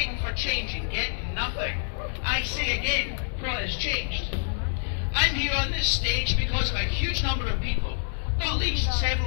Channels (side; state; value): right; silent; digital silence